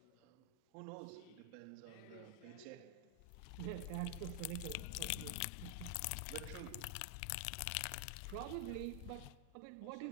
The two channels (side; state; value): both; different; correlation 0.00